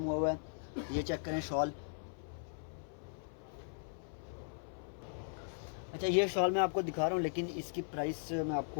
हुआ है। ये चेक करें शॉल। अच्छा, ये शॉल मैं आपको दिखा रहा हूँ, लेकिन इसकी प्राइस मैं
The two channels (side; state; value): right; silent; 52 dB below the other